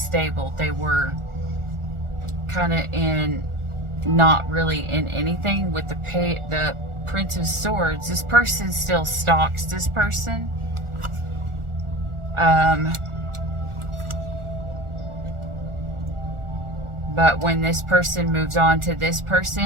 They were kind of in, not really in anything. With the Prince of Swords, this person still stalks this person. But when this person moves on to this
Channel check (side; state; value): left; late; 1.4 ms